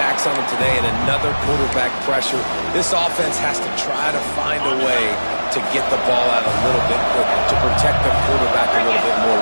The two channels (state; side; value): inverted; both; correlation -1.00